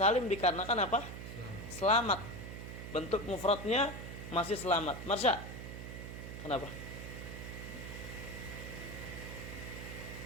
dikarenakan apa? Selamat. Bentuk mufradnya masih selamat. Marsha, kenapa?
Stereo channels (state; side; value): noise; right; hum, 9 dB below the sound